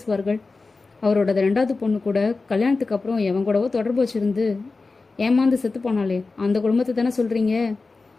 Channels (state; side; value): quieter; right; 3.8 dB